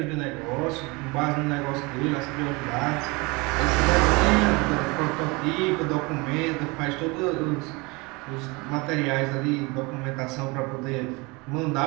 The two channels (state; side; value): quieter; left; 26.2 dB